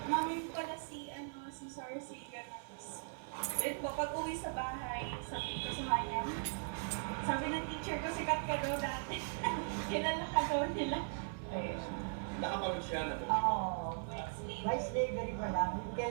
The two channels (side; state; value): left; silent; 52 dB below the other